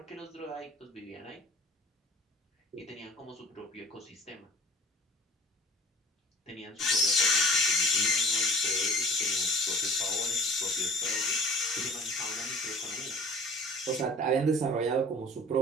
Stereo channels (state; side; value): normal; both; correlation 0.47